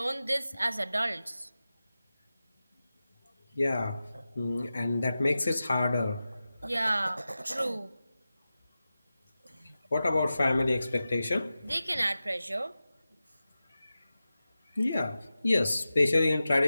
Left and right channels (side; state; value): both; inverted; correlation -0.94